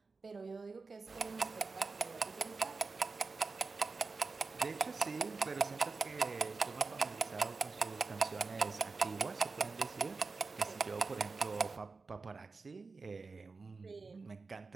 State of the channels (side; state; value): left; quieter; 4.2 dB